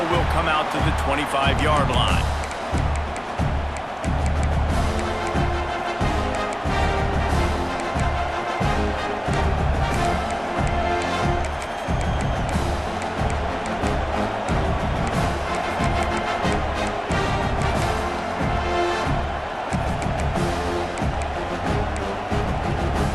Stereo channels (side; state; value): both; identical; correlation 1.00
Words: will come out to the 25-yard line.